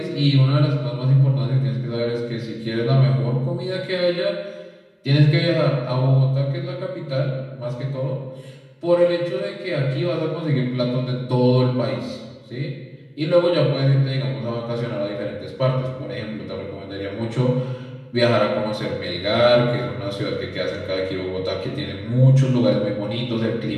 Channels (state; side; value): identical; both; correlation 1.00